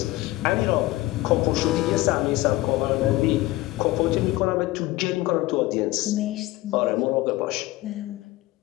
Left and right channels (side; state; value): right; quieter; 18.4 dB